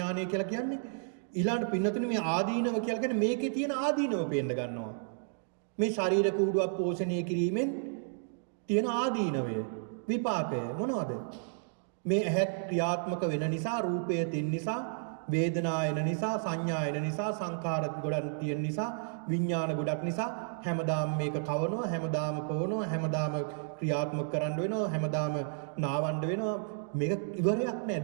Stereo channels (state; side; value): silent; left; digital silence